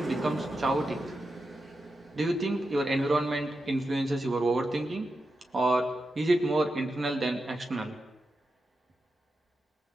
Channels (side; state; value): both; normal; correlation 0.89